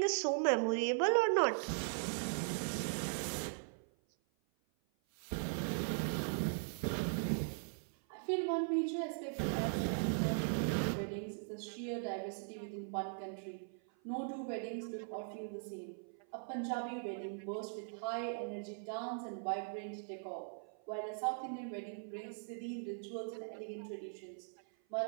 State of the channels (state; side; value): silent; left; 51 dB below the other